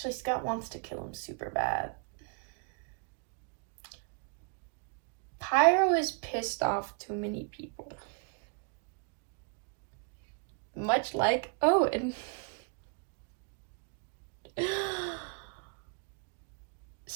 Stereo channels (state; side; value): quieter; left; 39.3 dB